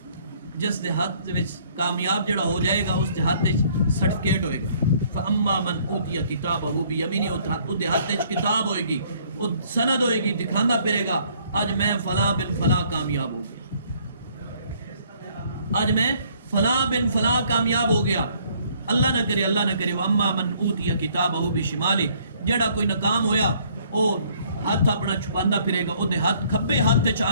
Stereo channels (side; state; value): both; inverted; correlation -0.62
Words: جس دے ہاتھ وچ کامیاب جڑا ہو جائے گا اس دے ہاتھ وچ سرٹیفکیٹ ہوئے گا. فاما من اوتی کتابہ بیمین اس دے ہاتھ وچ کتاب ہوئے گی وہ سند ہوئے گی دکھاندا پھرے گا آج میں فلاں بن فلاں کامیاب ہو گیا آج میں فلاں بن فلاں کامیاب ہو گیا. اللہ نہ کرے واما من اوتی کتابہ بشمالی جڑا کوئی ناکام ہویا او ہاتھ اپنا چھپاندا پھرے گا. او دے ہاتھ کھبے ہاتھ تے